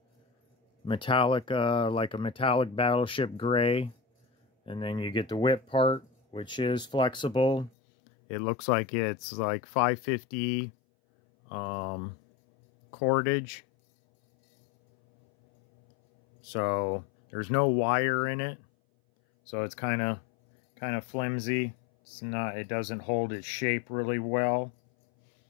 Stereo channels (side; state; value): right; drops out; at 7.7 s